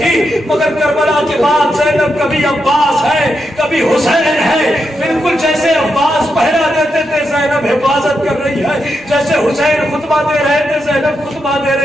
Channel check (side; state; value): both; normal; correlation 0.84